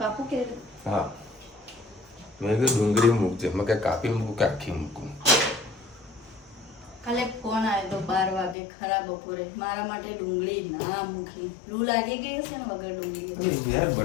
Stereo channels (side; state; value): right; drops out; at 8.6 s